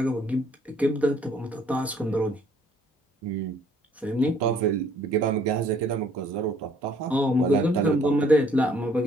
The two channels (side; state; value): both; normal; correlation 0.61